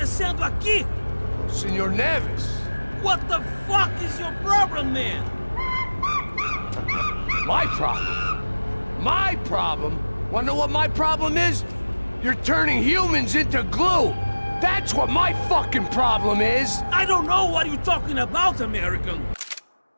aqui? Senor Neves. What the fuck is your problem, man? My problem? My problem? Wanna know what my problem is? You're turning humans into glue! That's what my fucking problem is! I don't know what you're talking about, American.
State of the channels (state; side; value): inverted; both; correlation -1.00